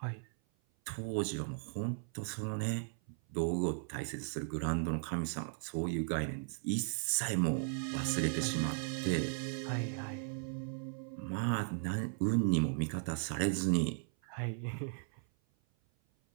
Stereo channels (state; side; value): silent; left; 53 dB below the other